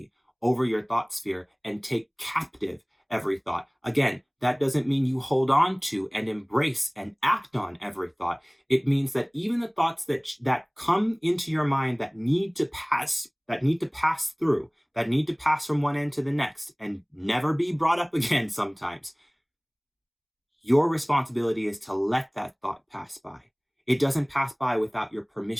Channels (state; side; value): identical; both; correlation 1.00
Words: over your thought sphere and take captive every thought. Again, that doesn't mean you hold on to and embrace and act on every thought. It means that even the thoughts that come into your mind that need to pass through, that need to pass from one end to the next and never be brought up again sometimes, your responsibility is to let that thought pass by. It doesn't pass by without your